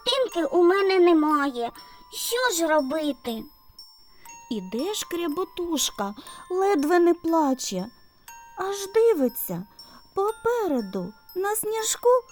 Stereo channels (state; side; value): identical; both; correlation 1.00